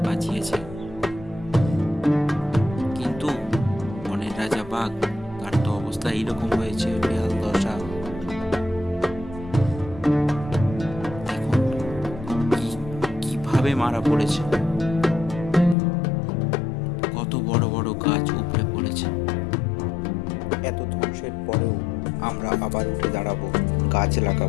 বাঁচিয়েছে, কিন্তু বনের রাজা বাঘ, তার তো অবস্থা এইরকম হয়েছে, বেহাল দশা। মারা পড়েছে, কত বড় বড় গাছ উপড়ে পড়েছে। এত ধ্বংসের পরেও আমরা আবার উঠে দাঁড়াবো, গাছ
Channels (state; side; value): drops out; right; at 15.8 s